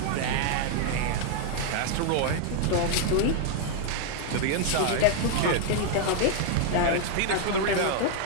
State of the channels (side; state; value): both; different; correlation 0.00